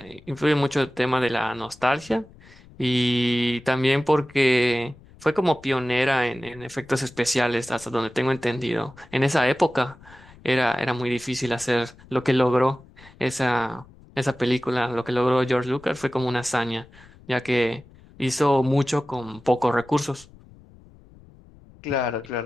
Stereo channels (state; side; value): noise; left; rumble, 24 dB below the sound